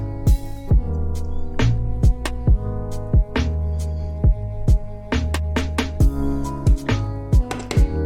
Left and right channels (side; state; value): both; identical; correlation 1.00